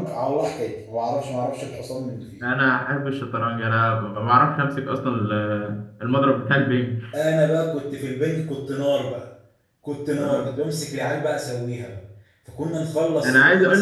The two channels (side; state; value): both; identical; correlation 1.00